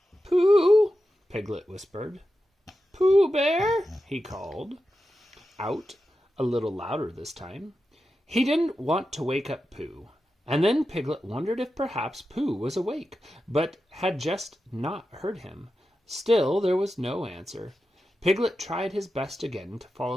Pooh, Piglet whispered. Pooh Bear, he called, out a little louder this time. He didn't want to wake up Pooh. And then Piglet wondered if perhaps Pooh was awake, but had just not heard him. Still, there was no answer. Piglet tried his best again to fall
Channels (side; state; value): both; normal; correlation 0.91